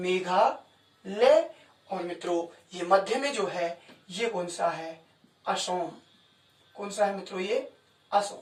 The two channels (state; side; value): identical; both; correlation 1.00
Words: और मित्रों ये मध्य में जो है ये कौन सा है? असम। कौन सा है मित्रों? ये असम।